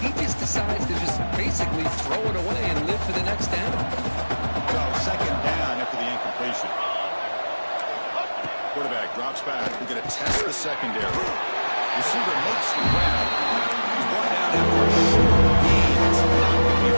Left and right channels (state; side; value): inverted; both; correlation -1.00